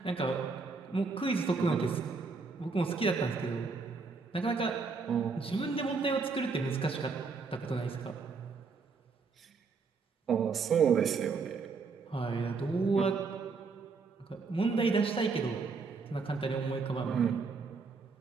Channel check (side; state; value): left; quieter; 4.6 dB